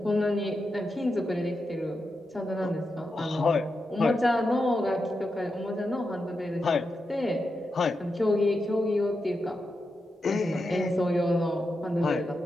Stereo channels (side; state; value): both; normal; correlation 0.88